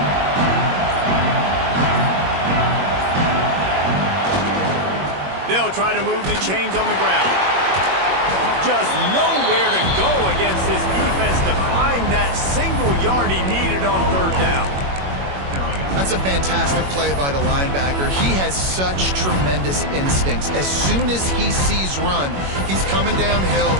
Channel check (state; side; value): late; left; 21 ms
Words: They'll try to move the chains on the ground. Just nowhere to go against this defense to find that single yard he needed on 3rd down. That's a fantastic play by the linebacker. He has such tremendous instincts. As soon as he sees run, he's coming downhill.